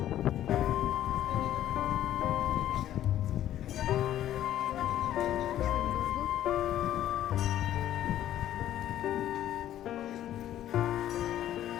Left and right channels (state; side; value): quieter; right; 12.3 dB